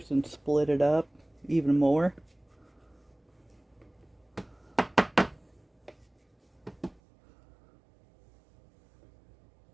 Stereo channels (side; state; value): left; drops out; at 7.0 s